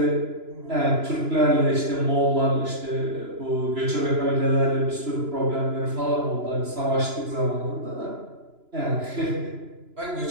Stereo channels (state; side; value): late; left; 2.9 ms